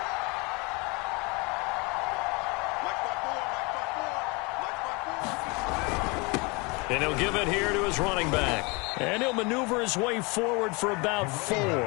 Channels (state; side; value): quieter; right; 28.4 dB